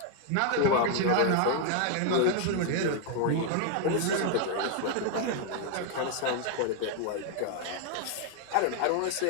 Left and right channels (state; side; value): different; both; correlation 0.00